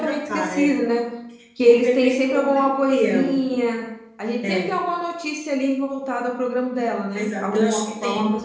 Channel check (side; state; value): both; identical; correlation 1.00